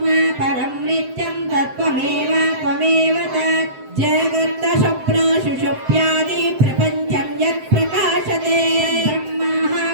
పరం నిత్యం తత్వమేవ త్వమేవ తత్ జగత్త స్వప్న సుషుప్యాది ప్రపంచం యత్ ప్రకాశతే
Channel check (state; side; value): late; left; 7.7 ms